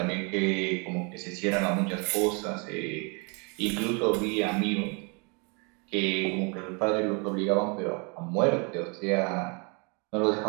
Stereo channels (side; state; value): left; quieter; 32.7 dB